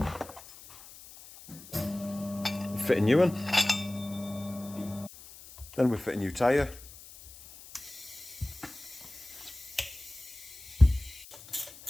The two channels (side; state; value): left; noise; hiss, 18 dB below the sound